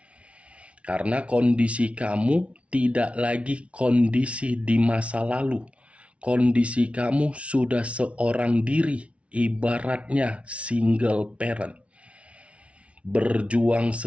Karena kondisi kamu tidak lagi kondisi di masa lalu. Kondisi kamu sudah seorang diri, ibaratnya single parent. Berjuang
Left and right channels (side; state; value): left; late; 0.062 ms